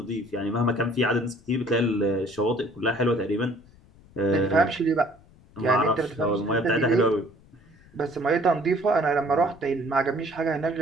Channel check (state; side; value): noise; left; rumble, 26 dB below the sound